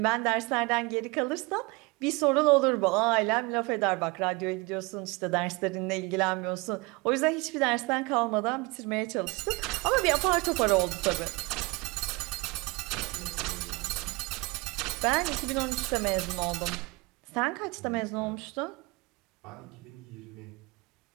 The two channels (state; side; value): quieter; left; 25.7 dB